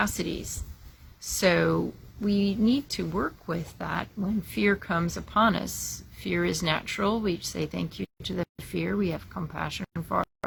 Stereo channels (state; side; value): identical; both; correlation 1.00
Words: So we need to work with that when fear comes upon us. Fear is natural. We say thank you to the fear. We have compassion for